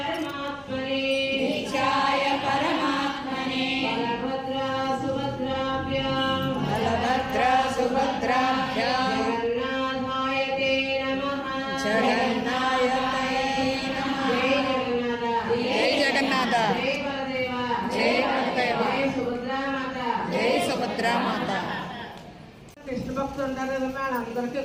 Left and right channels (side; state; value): both; identical; correlation 1.00